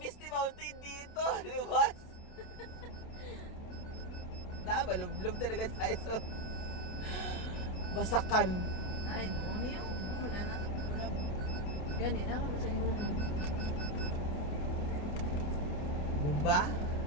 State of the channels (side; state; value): right; late; 28 ms